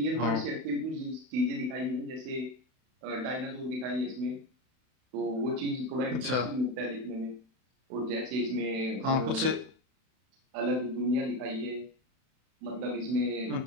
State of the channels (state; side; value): late; left; 31 ms